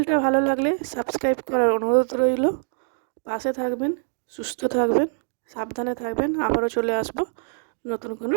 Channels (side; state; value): left; silent; digital silence